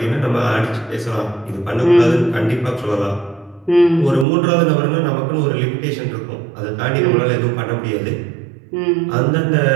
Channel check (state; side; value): drops out; left; at 4.2 s